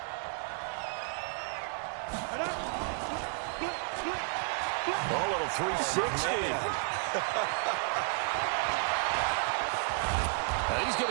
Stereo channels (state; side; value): silent; left; 56 dB below the other